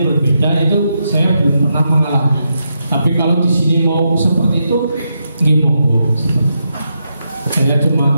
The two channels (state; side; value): inverted; both; correlation -0.83